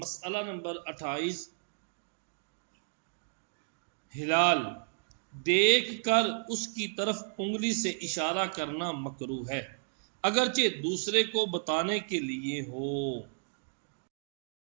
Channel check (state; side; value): silent; left; digital silence